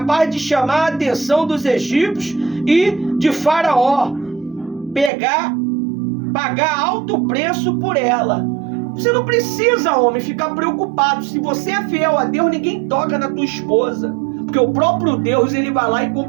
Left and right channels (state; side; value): drops out; left; at 5.1 s